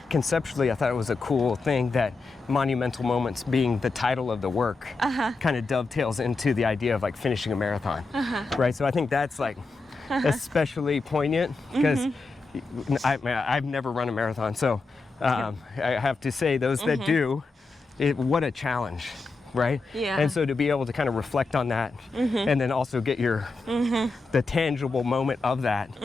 conceptually, it was a cool thing that Monumental Moments being the title of the work kind of dovetails into the idea of like finishing a marathon, right? So I think that's like especially poignant because I've never run a marathon, so I have to say those that do, what a challenge. Right? Yeah. And so to be able to kind of reflect on that and then also get your the tangible moment of that,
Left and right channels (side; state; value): right; quieter; 3.7 dB